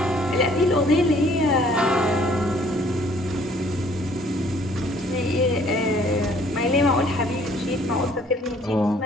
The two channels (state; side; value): normal; both; correlation 0.59